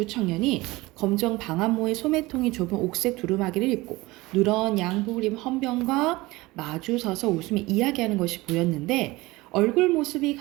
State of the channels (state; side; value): quieter; left; 20.8 dB